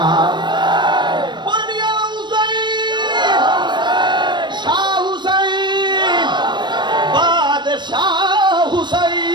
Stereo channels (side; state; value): left; late; 0.22 ms